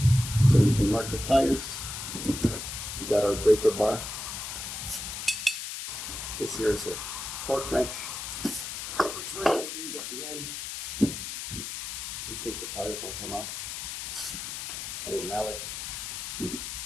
so we can mark the tires. We got our breaker bar. This here is a torque wrench, which we're going to use at the end in case the tires won't come off. Our mallet.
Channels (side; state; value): left; noise; hiss, 6 dB below the sound